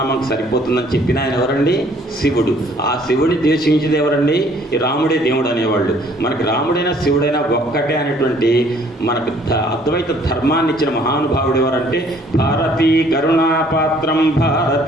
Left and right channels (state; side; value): normal; both; correlation 0.60